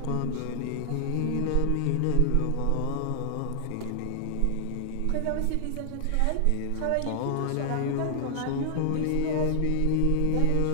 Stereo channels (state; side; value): different; both; correlation 0.00